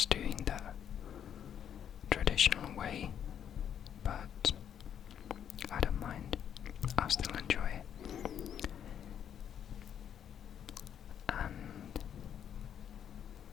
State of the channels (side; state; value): right; quieter; 9.0 dB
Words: doing the traditional way, but I don't mind. I still enjoy it. And